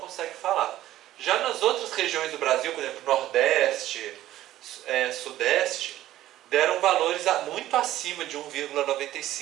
falar. Já nas outras regiões do Brasil, por exemplo, Nordeste, Sudeste, deram valores muito acima de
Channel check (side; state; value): left; quieter; 14.0 dB